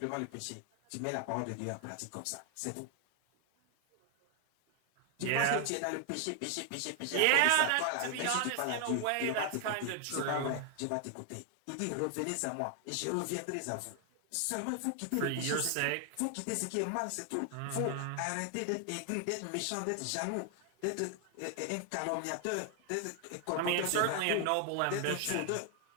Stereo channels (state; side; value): different; both; correlation 0.00